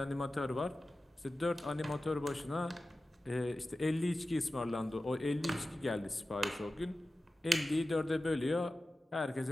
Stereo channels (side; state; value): both; normal; correlation 0.94